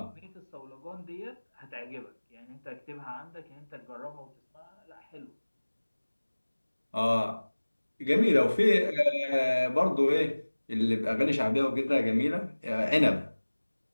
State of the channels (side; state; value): both; inverted; correlation -1.00